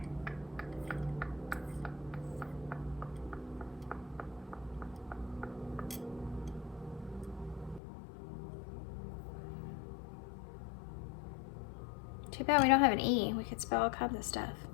Too bad we don't have an E. We could spell all kinds of stuff.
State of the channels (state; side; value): drops out; right; at 7.8 s